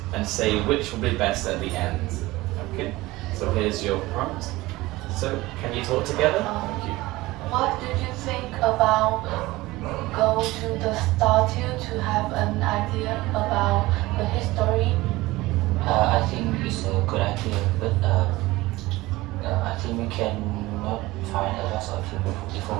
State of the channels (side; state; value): left; quieter; 19.4 dB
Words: and say which will be best at the end. Okay, so here's your prompt. So, can you talk together? Thank you. What did you think about go to the statue to have an idea about the history? I think it's a good idea, but I think we cannot find a lot of